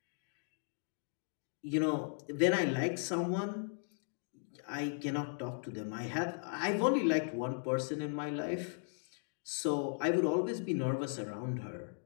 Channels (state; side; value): silent; right; digital silence